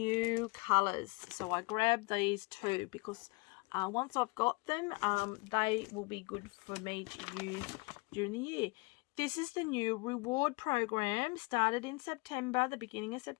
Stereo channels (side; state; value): right; quieter; 27.5 dB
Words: colours. So I grabbed these too because once I've got them, they will be good for me to use during the year. This is the new reward program, started in September, the beginning of